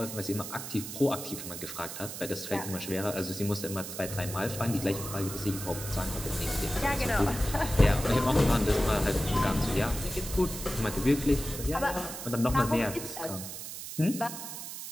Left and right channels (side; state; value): right; noise; hiss, 8 dB below the sound